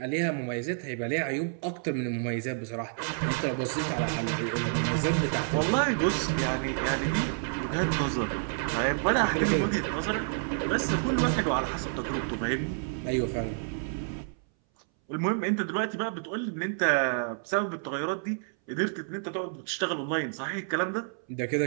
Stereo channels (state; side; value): silent; left; 58 dB below the other